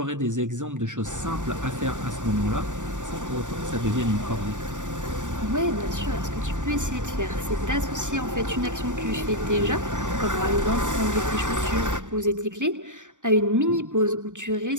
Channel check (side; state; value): left; late; 0.86 ms